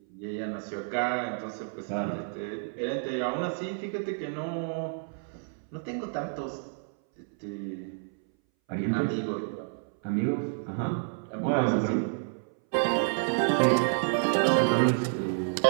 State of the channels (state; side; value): silent; left; 58 dB below the other